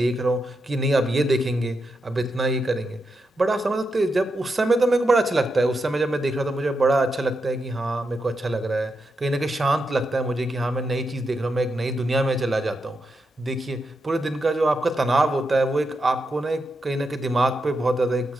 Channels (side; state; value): both; normal; correlation 0.85